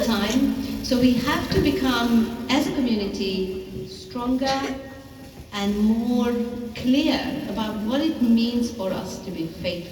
time. So we have to become, as a community, stronger and more clear about what it means for us to be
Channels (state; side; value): identical; both; correlation 1.00